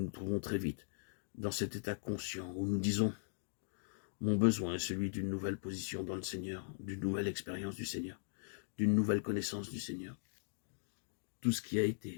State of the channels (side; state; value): right; silent; digital silence